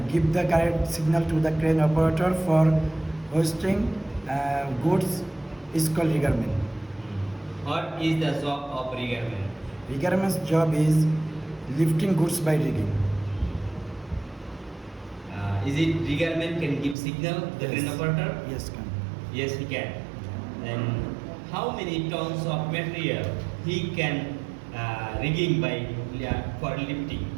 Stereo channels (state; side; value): drops out; left; at 16.9 s